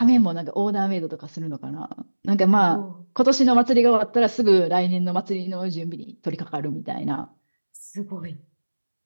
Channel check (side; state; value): both; inverted; correlation -1.00